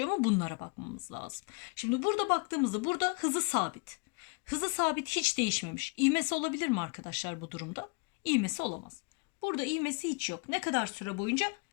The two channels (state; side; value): quieter; right; 32.3 dB